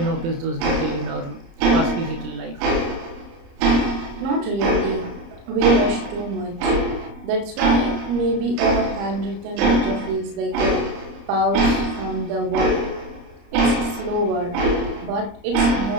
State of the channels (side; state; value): left; late; 30 ms